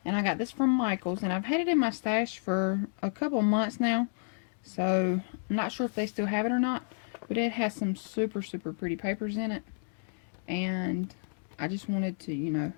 And I got this from Michael's, and I've had it in my stash for a couple months now, so I'm not sure if they still have it or not, but it has some super, super pretty papers in it, and I just wanted to, you know,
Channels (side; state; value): right; silent; digital silence